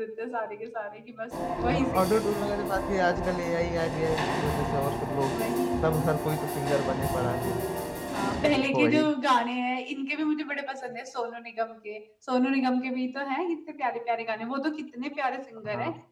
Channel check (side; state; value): both; identical; correlation 1.00